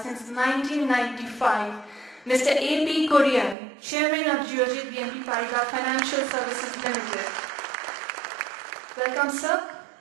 since 1995, Mr. A.P. Korean, Chairman of Geojit BNP Paribas Financial Services Limited. Welcome, sir.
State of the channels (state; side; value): drops out; left; at 3.6 s